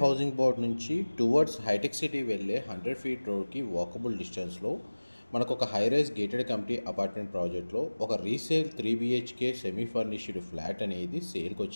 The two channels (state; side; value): inverted; both; correlation -1.00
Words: హౌసింగ్ బోర్డ్ నుంచి టువర్డ్స్ హైటెక్ సిటీ వెళ్ళే 100 ఫీట్ రోడ్కి వాకబుల్ డిస్టెన్స్లో మనకు ఒక high rise gated community apartment ప్రాజెక్ట్లో ఒక resale 3 BHK semi furnished flat అనేది సేల్కి